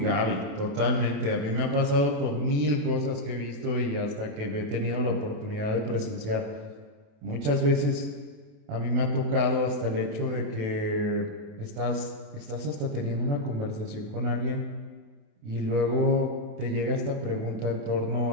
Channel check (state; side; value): late; left; 28 ms